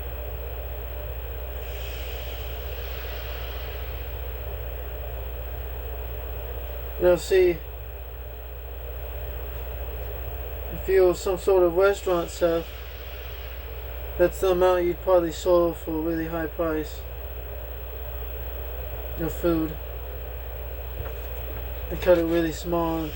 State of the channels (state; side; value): identical; both; correlation 1.00